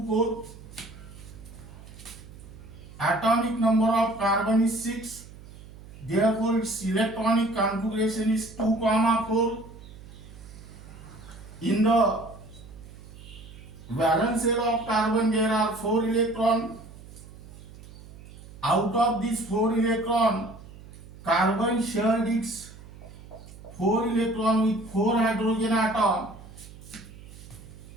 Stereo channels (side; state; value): right; noise; hum, 18 dB below the sound